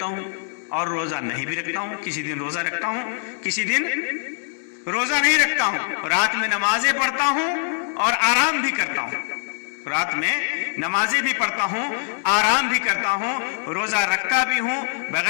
ہوں اور روزہ نہیں بھی رکھتا ہوں، کسی دن روزہ رکھتا ہوں، کسی دن روزہ نہیں رکھتا ہوں، رات میں نمازیں پڑھتا ہوں اور آرام بھی کرتا ہوں، رات میں نمازیں بھی پڑھتا ہوں، آرام بھی کرتا ہوں، روزہ رکھتا بھی ہوں،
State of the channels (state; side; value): silent; right; digital silence